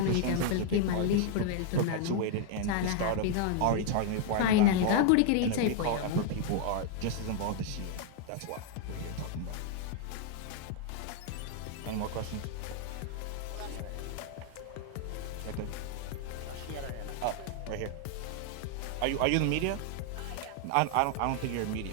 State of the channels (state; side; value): different; both; correlation 0.00